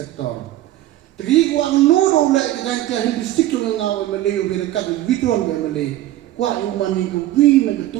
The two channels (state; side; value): quieter; left; 14.5 dB